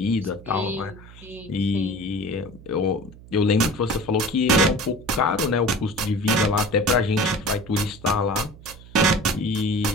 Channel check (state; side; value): noise; right; hum, 19 dB below the sound